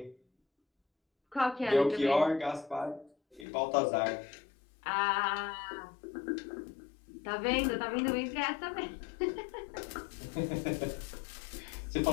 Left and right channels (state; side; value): drops out; right; at 3.5 s